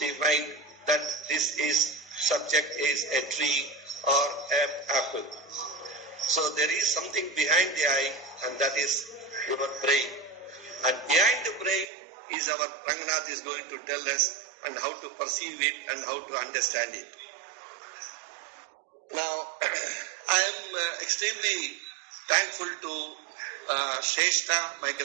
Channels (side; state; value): left; drops out; at 11.9 s